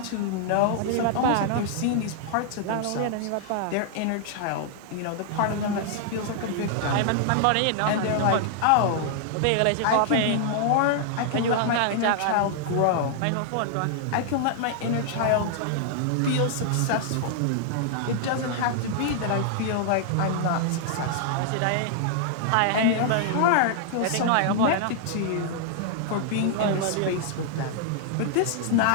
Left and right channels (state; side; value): different; both; correlation -0.01